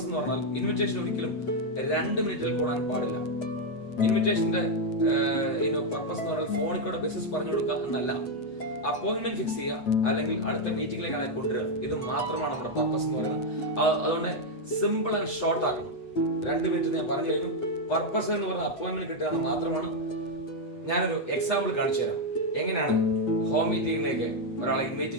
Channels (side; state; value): right; late; 8.3 ms